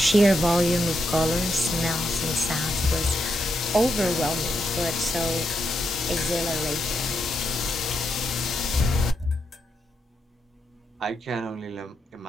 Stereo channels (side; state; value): both; normal; correlation 0.82